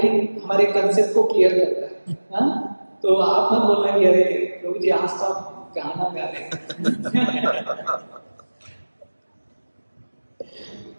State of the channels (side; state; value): both; inverted; correlation -1.00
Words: हमारे कंसेप्ट को क्लियर करता है। हाँ? तो आप मत बोलना कि अरे प्रभु जी आज तो आप गाना गा रहे हैं।